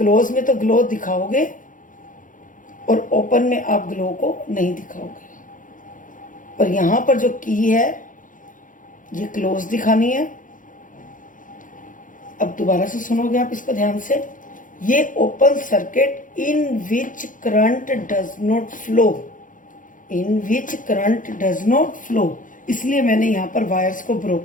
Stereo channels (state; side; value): late; right; 0.38 ms